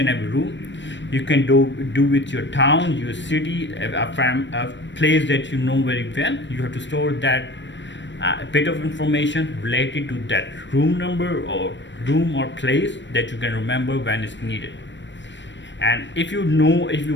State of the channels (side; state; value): right; late; 0.53 ms